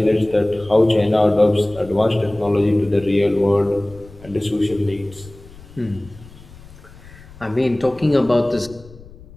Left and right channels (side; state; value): left; noise; rumble, 20 dB below the sound